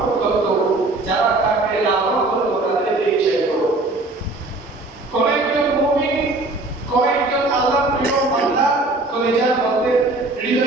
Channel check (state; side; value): quieter; left; 3.0 dB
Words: করত, যারা তাকে লালন করত, তাদেরকে চাইবে। কোন একজন মুমিন, কোন একজন আল্লাহর প্রিয় বান্দা কলিজার মধ্যে,